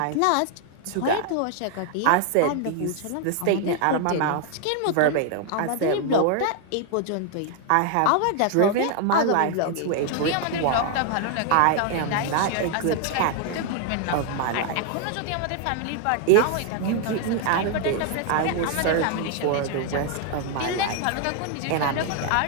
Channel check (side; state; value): both; different; correlation 0.00